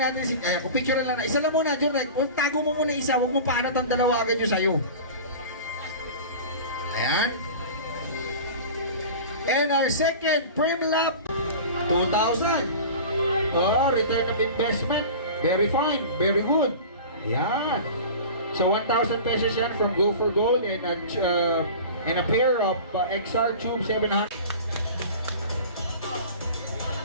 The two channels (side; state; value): both; inverted; correlation -0.36